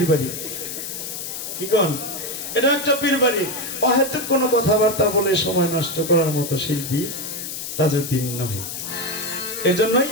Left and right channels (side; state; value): left; noise; hiss, 7 dB below the sound